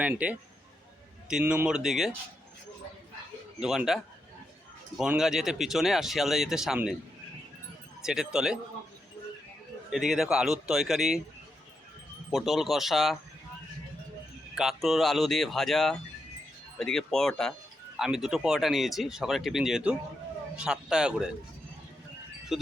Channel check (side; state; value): both; normal; correlation 0.84